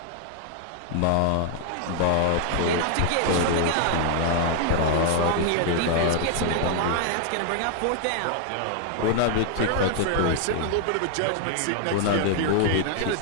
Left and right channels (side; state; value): both; different; correlation 0.00